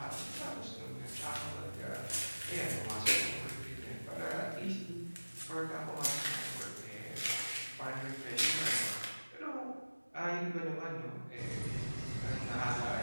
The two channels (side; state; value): both; inverted; correlation -1.00